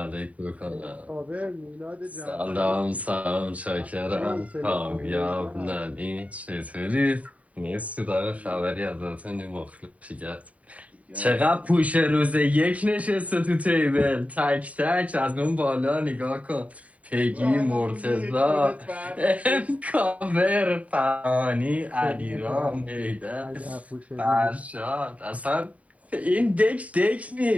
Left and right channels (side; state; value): left; late; 0.068 ms